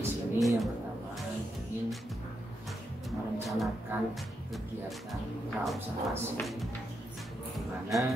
sini yang pertama ingin merencanakan kegiatan praobservasi, di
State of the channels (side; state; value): both; normal; correlation 0.83